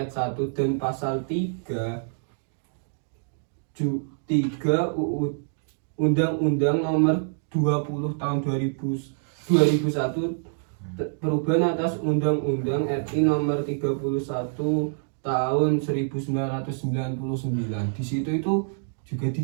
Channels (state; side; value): silent; left; digital silence